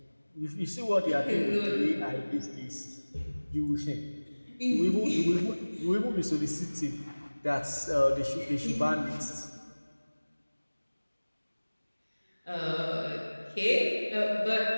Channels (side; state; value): both; inverted; correlation -1.00